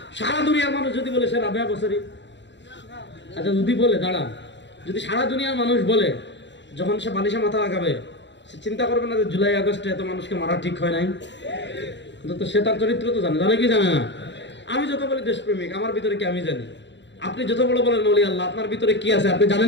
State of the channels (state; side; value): late; right; 0.52 ms